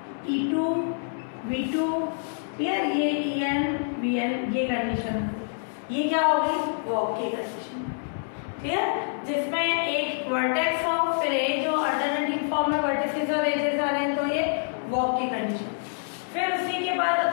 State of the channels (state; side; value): silent; right; digital silence